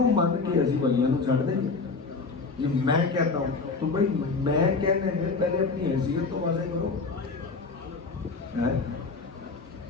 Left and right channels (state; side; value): quieter; right; 4.3 dB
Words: مان کے اسی ولیاں نو چھڑ دیں گے؟ یہ میں کہتا ہوں تو بھائی میں کہنے میں پہلے اپنی حیثیت تو واضح کرو۔